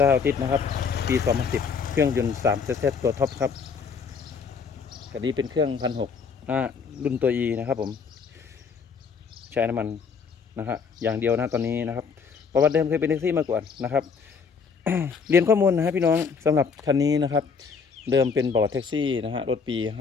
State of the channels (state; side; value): quieter; right; 5.7 dB